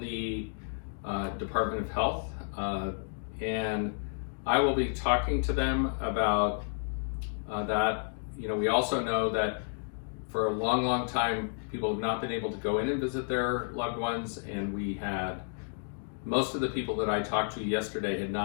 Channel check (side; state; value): right; silent; digital silence